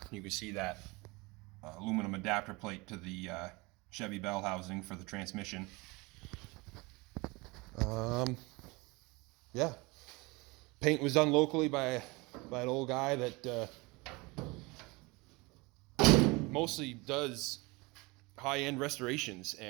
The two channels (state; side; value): quieter; left; 25.1 dB